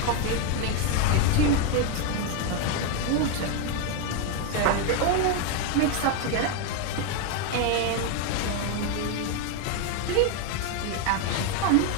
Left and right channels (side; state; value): both; different; correlation 0.01